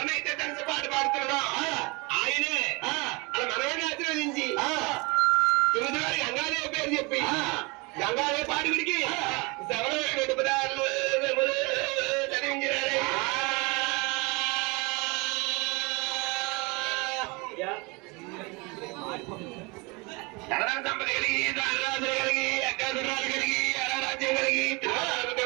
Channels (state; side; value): quieter; left; 27.5 dB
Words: కలిసి పాట పాడుతున్నాడో ఆయనే అలా మనవాడిని ఆశీర్వదించి తొమ్మిది వారి గంగాదేవి పేరు చెప్పి గంగాదేవి పాడుగుడికి శవరమైన రెండు పదాలు చదివించారు. ధనరాజ సంపద కలిగి ధనరాజులు కలిగి అగ్గాధురాలు కలిగి అరారాజ్యం కలిగి